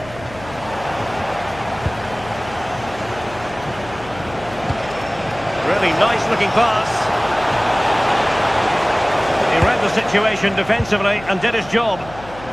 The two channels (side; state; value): left; noise; hum, 17 dB below the sound